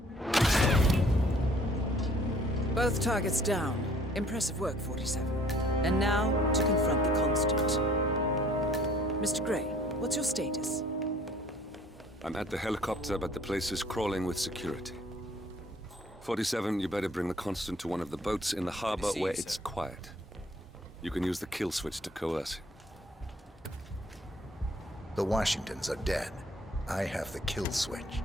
Both targets down. Impressive work, 47. And now, to confront the Constant. Mr. Gray, what's your status? I'm at the helicopter, but the place is crawling with security. 47, you better bring the Constant to one of the boats in the harbor where it's quiet. You can use the kill switch to coerce him. The Washingtons are dead. I have the kill switch.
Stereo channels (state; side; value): normal; both; correlation 0.57